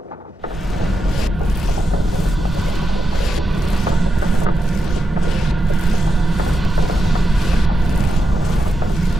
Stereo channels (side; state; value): both; normal; correlation 0.87